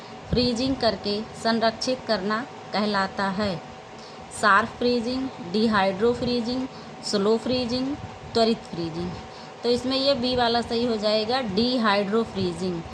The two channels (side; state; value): both; identical; correlation 1.00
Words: फ्रीजिंग करके संरक्षित करना कहलाता है। Sharp freezing, dehydro freezing, slow freezing, त्वरित फ्रीजिंग। तो इसमें ये बी वाला सही हो जाएगा, डिहाइड्रो फ्रीजिंग।